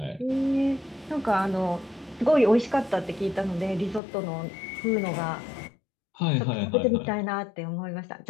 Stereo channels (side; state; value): right; drops out; at 4.0 s